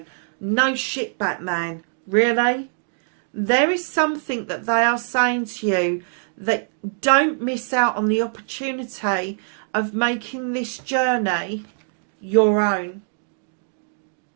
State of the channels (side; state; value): left; silent; digital silence